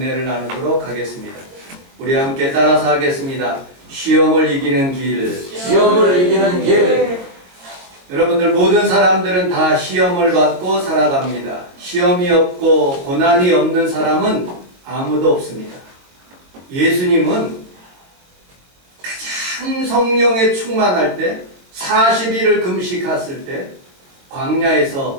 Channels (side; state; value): left; late; 22 ms